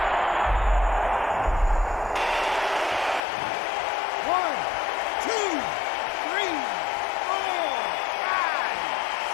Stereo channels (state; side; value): drops out; right; at 3.2 s